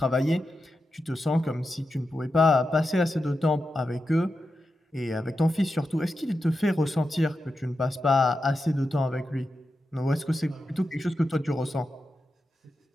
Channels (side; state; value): both; normal; correlation 0.89